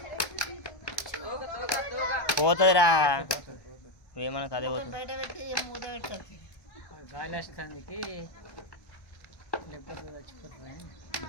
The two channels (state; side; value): late; right; 1.1 ms